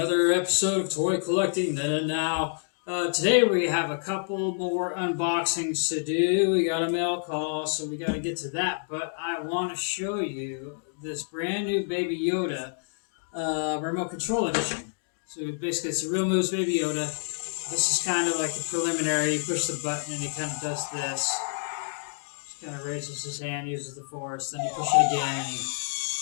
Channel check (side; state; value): right; silent; digital silence